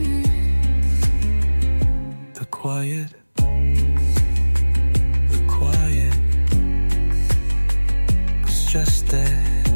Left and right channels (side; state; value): both; inverted; correlation -1.00